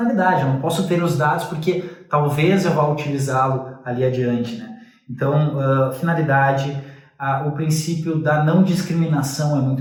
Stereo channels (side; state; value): both; identical; correlation 1.00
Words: Eu não posso ter os dados porque talvez eu vá utilizá-lo ali adiante, né? Então, finalidade, o princípio da não discriminação é muito